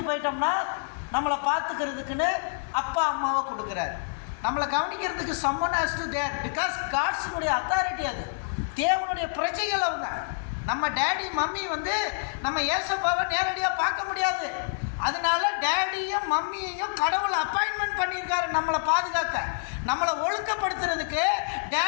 போயிட்டோம்னா நம்மளை பார்த்துக்கிறதுக்குன்னு அப்பா அம்மாவை கொடுக்குறார். நம்மளை கவனிக்கிறதுக்கு someone has to there because காட்ஸுடைய அத்தாரிட்டி. அது தேவனுடைய பிரஜைகள் அவங்க. நம்ம டேடி மம்மி நம்ம ஏசப்பாவை நேரடியாக பார்க்க முடியாது. அதனால டேடியும் மம்மியையும் கடவுள் அப்பாயின்மெண்ட் பண்ணியிருக்காரு நம்மளை பாதுகாக்க, நம்மளை ஒழுக்கப்படுத்துறதுக்கு.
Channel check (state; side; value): silent; right; 59 dB below the other